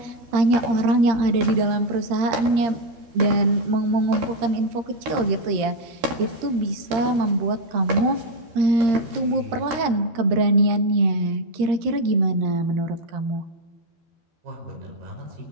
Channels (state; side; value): late; left; 13 ms